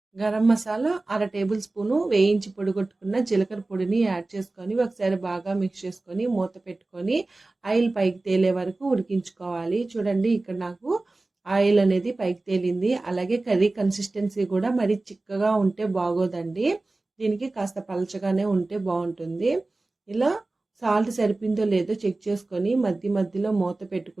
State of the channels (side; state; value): left; quieter; 3.1 dB